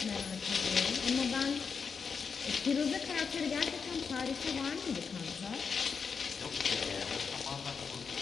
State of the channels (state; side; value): quieter; right; 5.7 dB